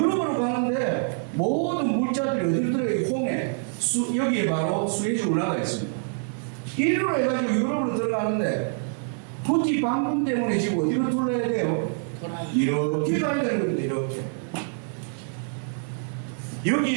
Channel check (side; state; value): left; silent; 61 dB below the other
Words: 가는데 모든 물자들이 어디로 들어가요? 홍해 여기에 바로 수에즈 운하가 있습니다. 이리로 해가지고 유럽으로 들어가는데 푸티 방금 때문에 지금 어디로 둘러야 돼요? 이렇게 가야 되는 겁니다.